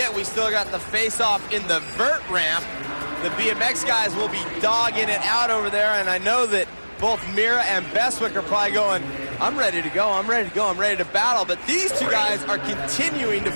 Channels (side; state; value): both; inverted; correlation -1.00